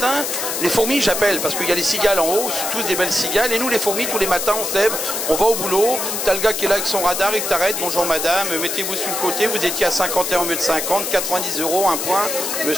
les fourmis, j'appelle, parce qu'il y a les cigales en haut, c'est tous des belles cigales. Et nous, les fourmis, tous les matins, on se lève, on va au boulot. T'as le gars qui est là avec son radar, il t'arrête. Bonjour madame, mettez-vous sur le côté, vous étiez à 51 au lieu de 50, 90 €, un point.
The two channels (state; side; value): noise; left; hiss, 2 dB below the sound